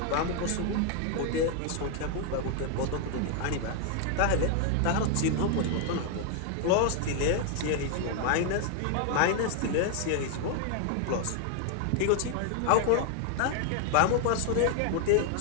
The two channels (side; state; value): both; different; correlation 0.00